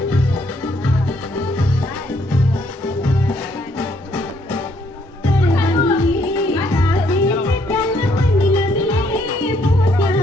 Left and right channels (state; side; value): normal; both; correlation 0.69